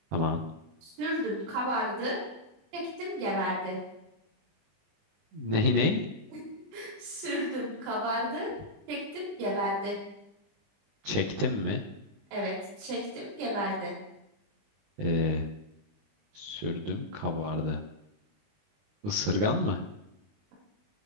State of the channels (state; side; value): late; left; 19 ms